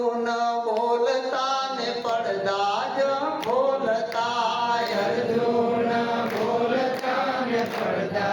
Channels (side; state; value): both; identical; correlation 1.00